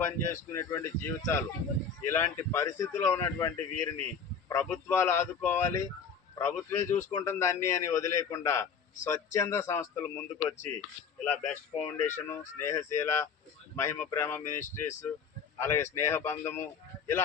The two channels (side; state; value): right; quieter; 6.0 dB